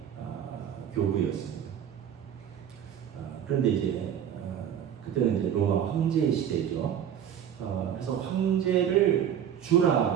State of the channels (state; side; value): quieter; left; 9.3 dB